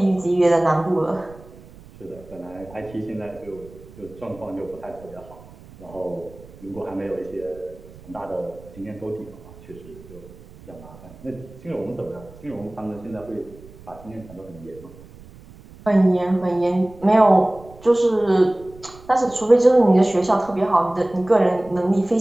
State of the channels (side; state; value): right; noise; rumble, 21 dB below the sound